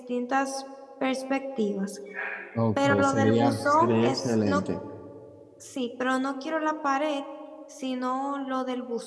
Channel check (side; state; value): both; identical; correlation 1.00